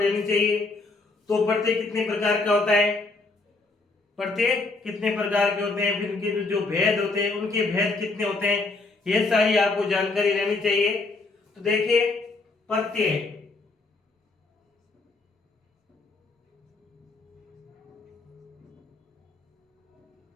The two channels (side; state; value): right; quieter; 3.5 dB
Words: चाहिए। तो प्रत्यय कितने प्रकार का होता है, प्रत्यय कितने प्रकार के होते हैं, फिर उनके जो भेद होते हैं उनके भेद कितने होते हैं, ये सारी आपको जानकारी रहनी चाहिए। तो देखिए, प्रत्यय,